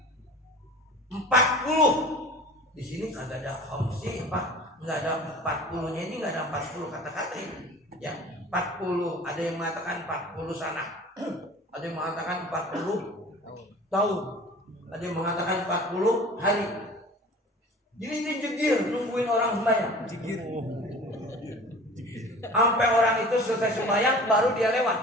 40. Di sini kagak ada khamsi, Pak. Enggak ada 40-nya ini, enggak ada 40 kata-kata ini. Ya, 40. Ada yang mengatakan 40 sana. Ada yang mengatakan 40 tahun. Ada yang mengatakan 40 hari. Jadi dia jegir nungguin orang sembahyang. Jegir. Sampai orang itu selesai sembahyang baru dia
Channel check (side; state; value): both; normal; correlation 0.42